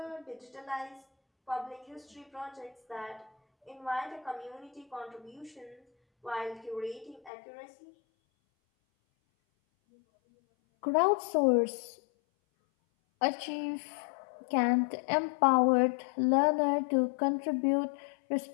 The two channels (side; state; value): right; drops out; at 7.3 s